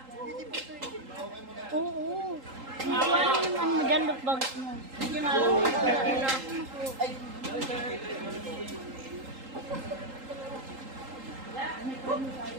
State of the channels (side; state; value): left; late; 3.8 ms